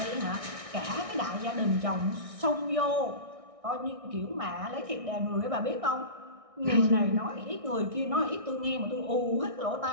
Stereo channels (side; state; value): left; late; 1.6 ms